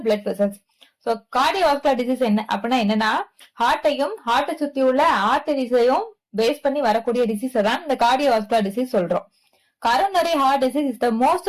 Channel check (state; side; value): identical; both; correlation 1.00